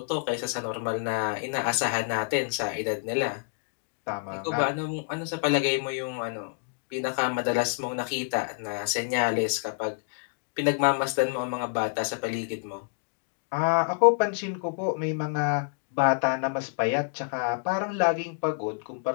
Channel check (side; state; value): right; silent; digital silence